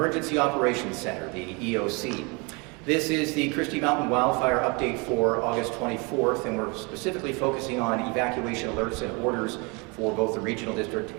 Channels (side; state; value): left; quieter; 29.7 dB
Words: Operations Center, the EOC. This is the Christie Mountain wildfire update for August 24th, and we're specifically focusing on evacuation alerts and orders for both the Regional District